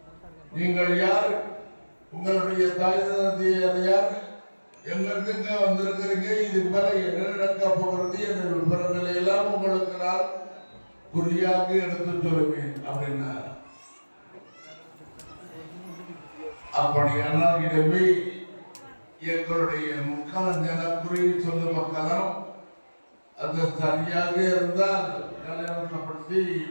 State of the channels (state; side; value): inverted; both; correlation -1.00